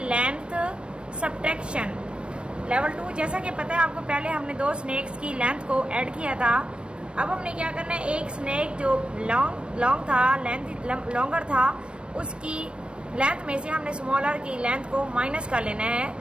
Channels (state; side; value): late; left; 0.057 ms